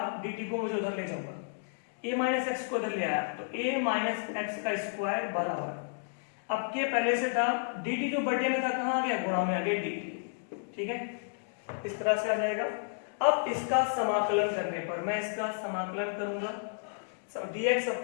dt को मुझे उधर ले जाऊंगा, a माइनस एक्स को उधर ले आया, तो a माइनस एक्स का स्क्वायर बराबर, अब के पहले से था, dt जो बटे में था कहाँ आ गया, गुणा में आ गया dt। ठीक है, इस तरह से आ जाएगा। अब इसका समाकलन करने पर, मैं इसका समाकलन करूंगा, dx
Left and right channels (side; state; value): right; silent; digital silence